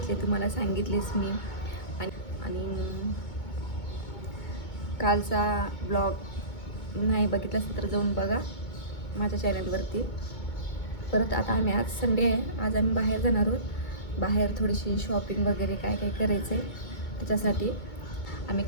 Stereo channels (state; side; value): late; right; 2.2 ms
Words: तुम्हाला सांगितलेच मी. आणि कालचा ब्लॉग नाही बघितला तर जाऊन बघा माझ्या चॅनलवरती. परत आता आम्ही आज संडे आहे, आज आम्ही बाहेर जाणार आहोत. बाहेर थोडीशी शॉपिंग वगैरे काय काय करायचं आहे, त्याच्यासाठी आम्ही